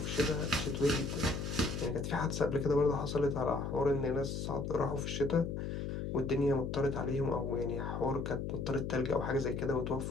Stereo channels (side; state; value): left; noise; hum, 3 dB below the sound